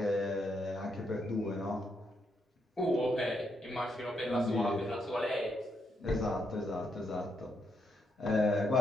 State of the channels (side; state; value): both; normal; correlation 0.79